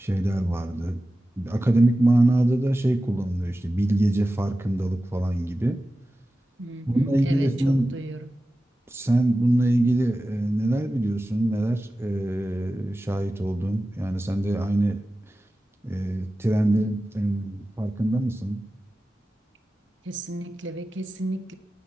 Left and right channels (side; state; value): both; normal; correlation 0.94